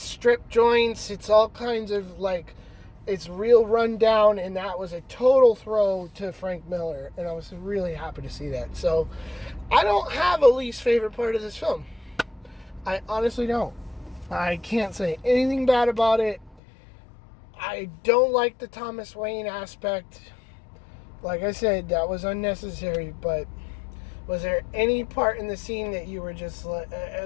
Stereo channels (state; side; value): drops out; right; at 16.6 s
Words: strip joints. It's all kinds of like, it's real run down, and that was a total throw to Frank Miller, and I was really happy to see that. So I don't have a least favorite part of this film. I honestly don't. I can't say anything bad about it. I don't like the Thomas Wayne aspect. Like I said, that was unnecessary, but was there any part in the scene that you were just